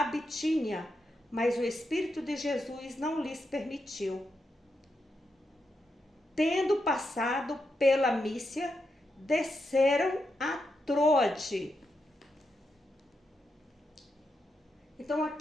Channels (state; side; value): normal; both; correlation 0.85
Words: Bitínia, mas o Espírito de Jesus não lhes permitiu. Tendo passado pela Mísia, desceram a Troade. Então